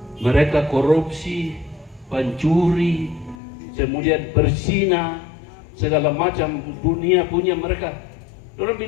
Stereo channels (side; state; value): right; drops out; at 3.4 s